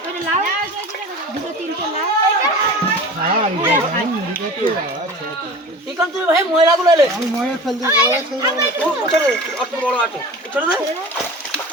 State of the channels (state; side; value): normal; both; correlation 0.37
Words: লাও দুটো তিনটে লাও হ্যাঁ ঠিক আছে তুই ভাই ময়লাগুলো এলে আমি ময়লা ফেল দিই ও ছোট অত বড় আছে ছোট দে